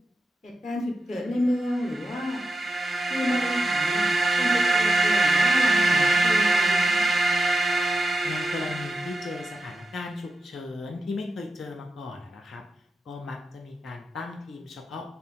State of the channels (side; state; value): both; normal; correlation 0.89